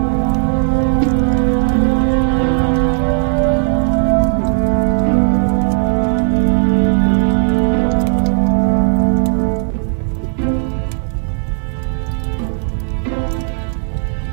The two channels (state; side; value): silent; left; digital silence